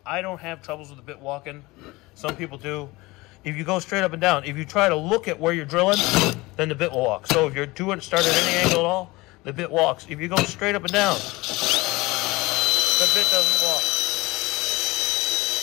I don't have troubles with the bit walking. Some people do. If you go straight up and down, if you try to look at where you're drilling, then the bit will walk. So if you're doing start at any angle at all, the bit walks. If you go straight up and down, the bit doesn't walk.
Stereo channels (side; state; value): right; quieter; 21.8 dB